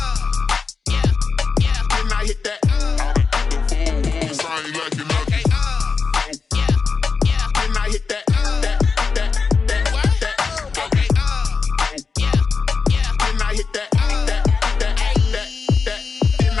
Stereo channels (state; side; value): quieter; right; 5.0 dB